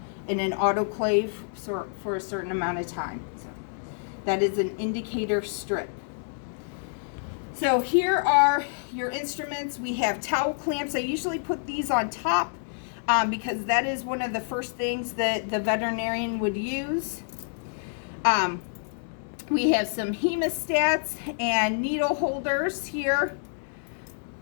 in an autoclave for a certain amount of time. So that is an indicator strip. So here are your instruments. We have towel clamps. I usually put these on top because that is one of the first things that the veterinarian would use. We have some hemostats and needle holders here.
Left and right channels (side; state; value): right; silent; digital silence